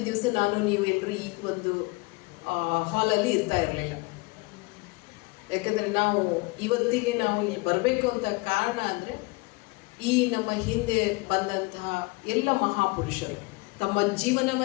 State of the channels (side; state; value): right; quieter; 25.4 dB